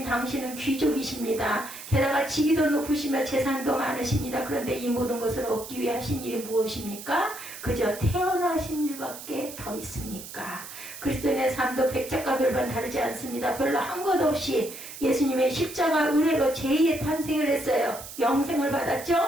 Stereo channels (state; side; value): noise; right; hiss, 12 dB below the sound